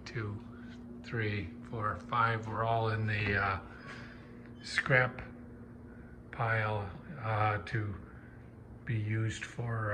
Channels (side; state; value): both; identical; correlation 1.00